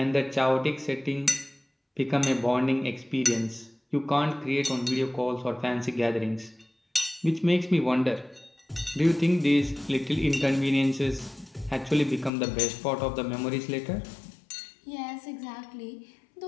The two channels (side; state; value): right; drops out; at 12.3 s